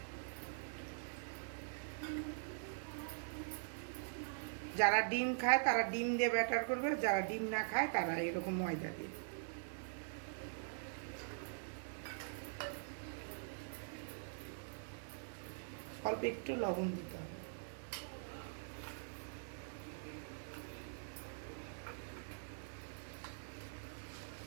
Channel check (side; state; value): left; silent; digital silence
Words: যারা ডিম খায় তারা ডিম দিয়ে ব্যাটার করবে, যারা ডিম না খায় তারা এরকম ময়দা দিয়ে। অল্প একটু লবণ দিতে হবে।